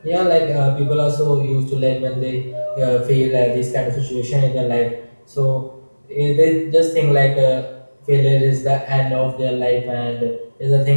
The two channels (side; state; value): both; inverted; correlation -1.00